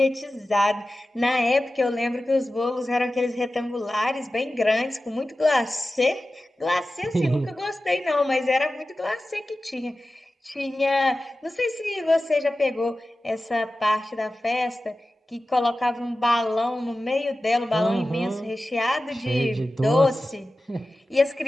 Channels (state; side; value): normal; both; correlation 0.95